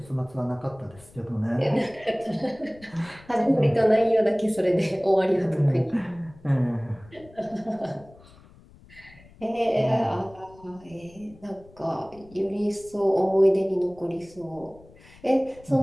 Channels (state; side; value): noise; left; rumble, 24 dB below the sound